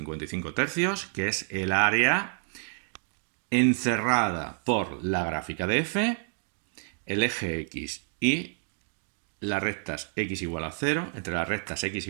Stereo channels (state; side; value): silent; left; digital silence